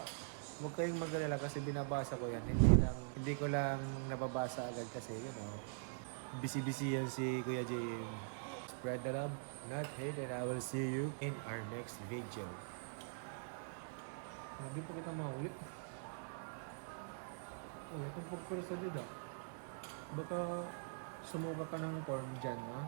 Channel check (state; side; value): silent; left; digital silence